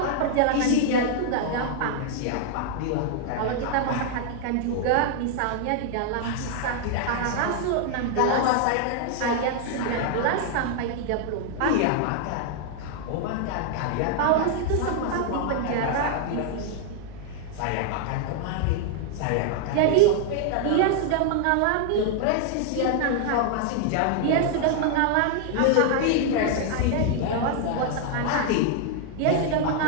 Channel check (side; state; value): both; different; correlation 0.00